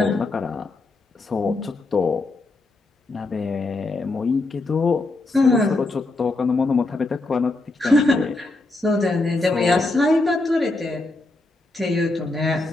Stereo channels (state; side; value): quieter; right; 3.0 dB